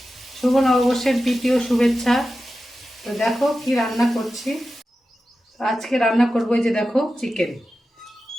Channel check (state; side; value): normal; both; correlation 0.93